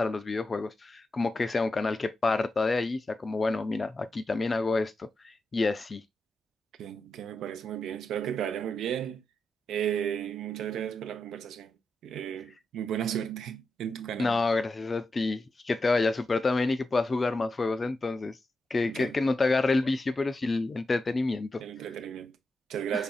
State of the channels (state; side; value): normal; both; correlation 0.87